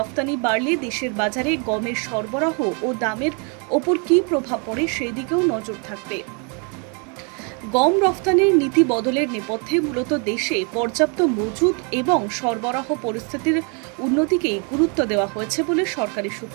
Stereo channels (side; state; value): left; quieter; 35.9 dB